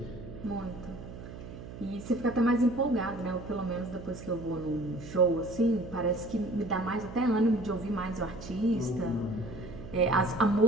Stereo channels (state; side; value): noise; right; hum, 12 dB below the sound